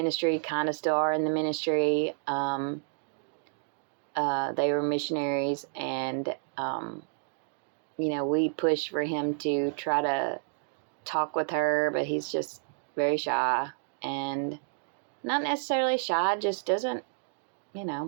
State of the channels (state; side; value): silent; left; digital silence